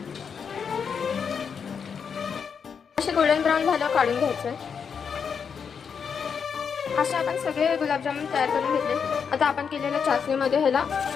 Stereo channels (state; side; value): quieter; right; 6.6 dB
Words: असे गोल्डन ब्राऊन झाल्यावर काढून घ्यायचं. असे आपण सगळे गुलाबजामुन तयार करून घेतले. आता आपण केलेल्या चाचणीमध्ये ह्याला